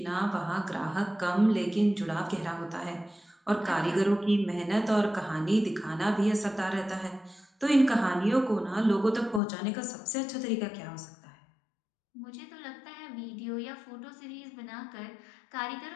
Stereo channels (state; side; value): drops out; right; at 9.4 s